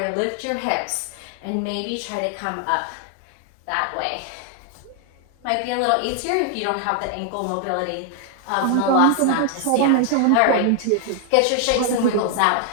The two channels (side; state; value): both; different; correlation 0.00